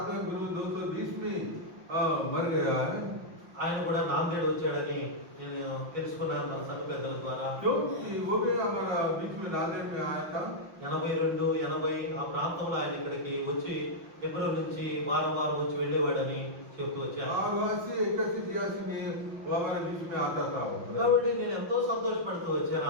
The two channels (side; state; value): left; late; 5.9 ms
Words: गुरु 220 में मर गया है। ఆయన కూడా నాందేడ్ వచ్చాడని నేను తెలుసుకున్నాను మన సంఘ పెద్దల ద్వారా. क्योंकि वो भी हमारा बीच में नांदेड़ में आया था। 82, 80 ఆ ప్రాంతంలో ఆయన ఇక్కడికి వచ్చి హెబ్రోన్ నుంచి వారం వారం వచ్చి వెళ్ళేవాడని చెప్తూ వచ్చారు. और वहाँ से 81-82 में वो हमारे बीच में आता था। కాబట్టి నేను ఎంతో సంతోషపడుతూ వచ్చాను